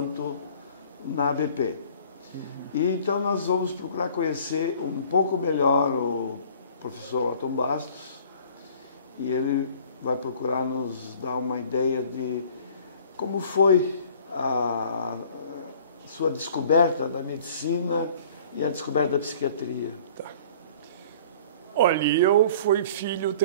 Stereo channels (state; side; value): inverted; both; correlation -0.51